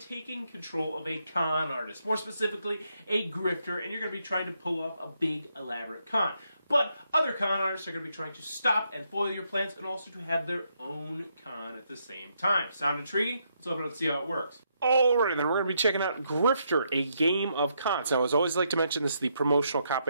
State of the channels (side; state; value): both; inverted; correlation -0.77